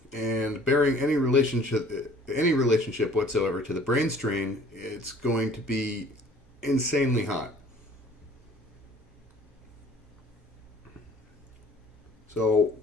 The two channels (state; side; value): normal; both; correlation 0.53